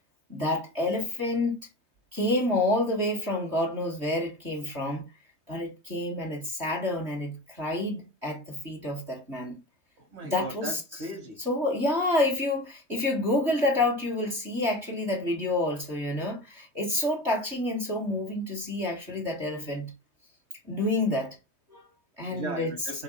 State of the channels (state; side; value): late; left; 3.2 ms